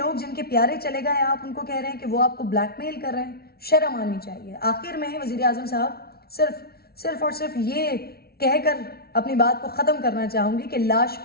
جن کے پیارے چلے گئے, آپ ان کو کہہ رہے ہیں کہ وہ آپ کو بلیک میل کر رہے ہیں. شرم آنی چاہیے. آخر میں وزیر اعظم صاحب صرف اور صرف یہ کہہ کر اپنی بات کو ختم کرنا چاہوں گی کہ لاش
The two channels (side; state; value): right; late; 0.45 ms